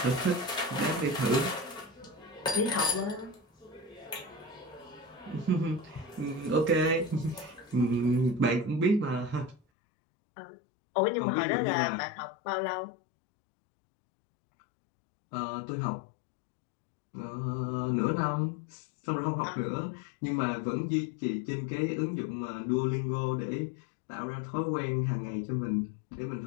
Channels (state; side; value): drops out; right; at 9.6 s